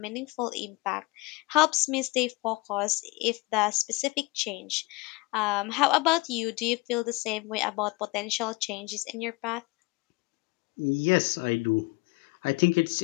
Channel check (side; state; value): right; quieter; 24.3 dB